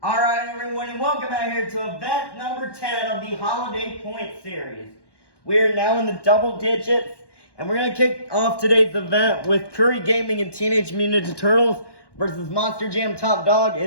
Alright everyone, and welcome out here to event number 10 of the Holiday Point Series. We are now in the double digits, and we're going to kick off today's event with Curry Gaming and Teenage Mutant Ninja Turtles versus Monster Jam Top Dog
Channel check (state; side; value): late; right; 1.1 ms